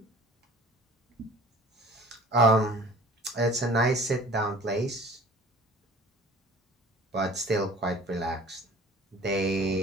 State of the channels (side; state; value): both; normal; correlation 0.46